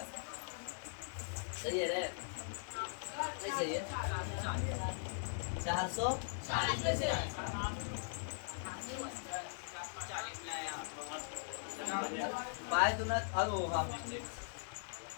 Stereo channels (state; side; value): silent; right; digital silence